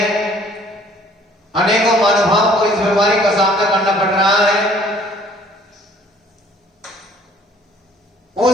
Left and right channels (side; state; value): both; normal; correlation 0.57